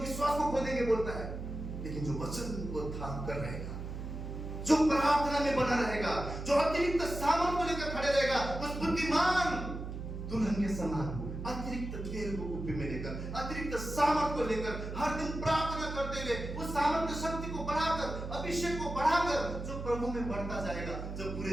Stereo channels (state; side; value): noise; right; hum, 7 dB below the sound